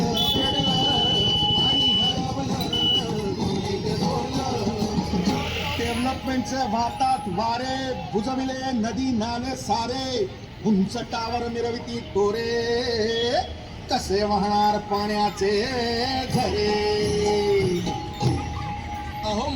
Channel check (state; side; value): identical; both; correlation 1.00